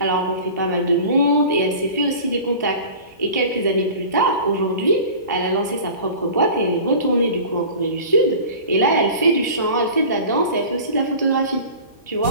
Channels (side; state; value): both; inverted; correlation -0.39